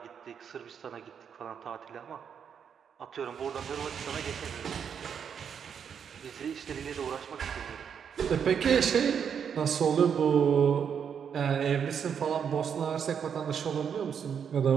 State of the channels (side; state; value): left; quieter; 7.5 dB